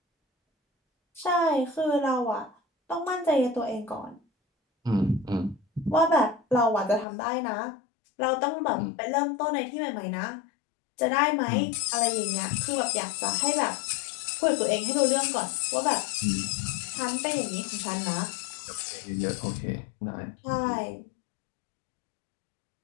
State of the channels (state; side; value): drops out; right; at 7.1 s